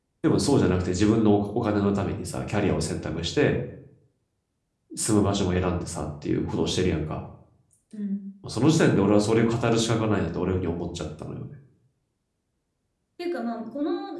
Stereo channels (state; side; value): identical; both; correlation 1.00